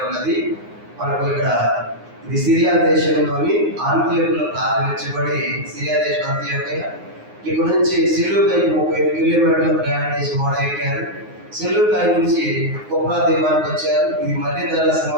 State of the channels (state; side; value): late; left; 9.6 ms